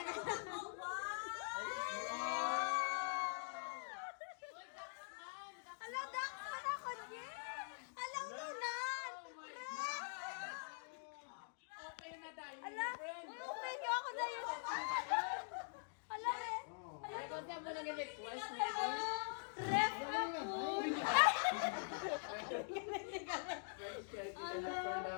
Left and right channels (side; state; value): right; silent; digital silence